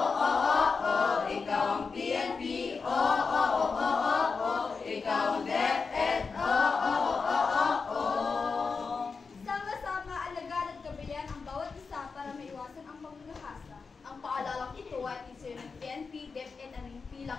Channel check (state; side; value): quieter; right; 4.9 dB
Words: Ikaw ang PNP, ikaw ang DepEd, Sama-sama alagaan at gabayan ang bawat isa para maiwasan ang pagkakasa. Ang paalalang ito ay isyo ng PNP, DepEd at ng